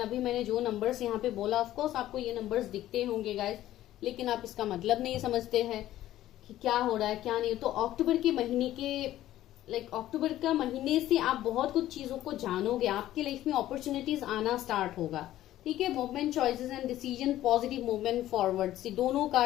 मैंने जो नंबर्स यहाँ पे बोला, ऑफकोर्स आपको ये नंबर्स दिखते होंगे गाइस, लेकिन आप इसका मतलब नहीं समझते हैं कि क्या हो रहा है क्या नहीं। तो अक्टूबर के महीने के अक्टूबर का महीने से आप बहुत कुछ चीजों को जानोगे, आपके लाइफ में अपॉर्चुनिटीज आना स्टार्ट होगा, ठीक है। Movement, choices and decision, positive movement forward. See दोनों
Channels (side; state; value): right; quieter; 13.8 dB